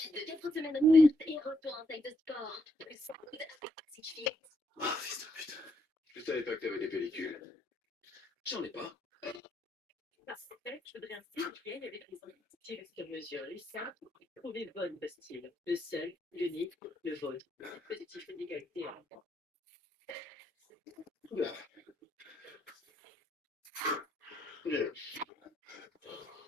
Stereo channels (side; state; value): both; normal; correlation 0.75